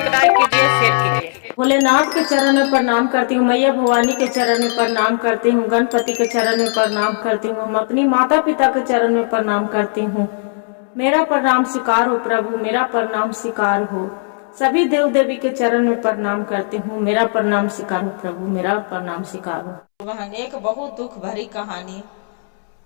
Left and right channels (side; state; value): right; silent; 68 dB below the other